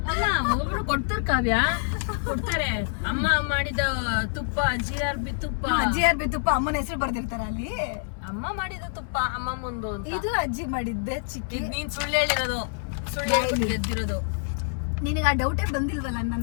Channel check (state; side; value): silent; right; 60 dB below the other